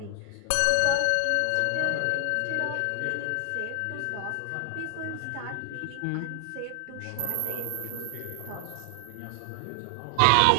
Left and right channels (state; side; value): different; both; correlation 0.00